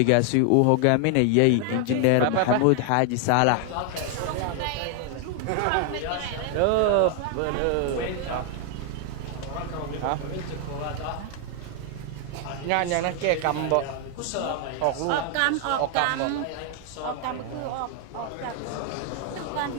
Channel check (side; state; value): both; different; correlation 0.00